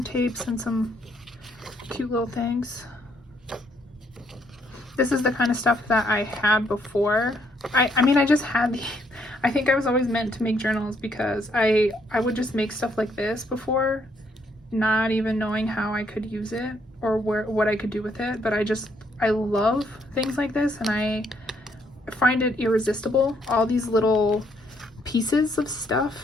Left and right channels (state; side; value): normal; both; correlation 0.71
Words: tapes, and some cute little things. This is the kind of stuff that I had before. I mean, I just had I think I was always meant to make journals because I would just make stuff like this before, not even knowing how I could use it or what I could do with it. But I love things like this, and I find it irresistible, all these little pieces of stuff.